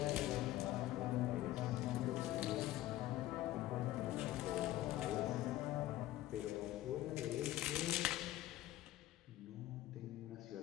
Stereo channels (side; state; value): right; quieter; 15.0 dB